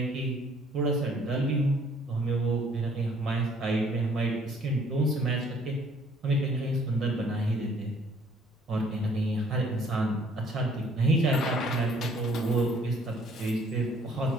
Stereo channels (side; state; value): both; normal; correlation 0.59